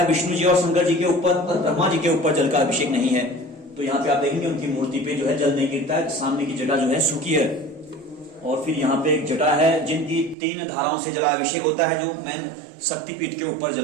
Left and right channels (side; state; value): left; drops out; at 10.4 s